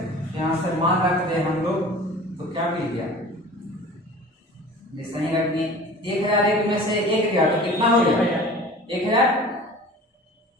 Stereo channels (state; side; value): normal; both; correlation 0.41